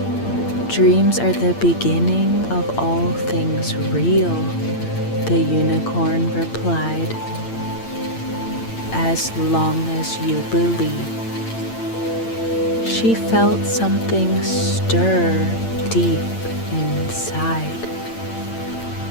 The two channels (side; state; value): right; late; 8.8 ms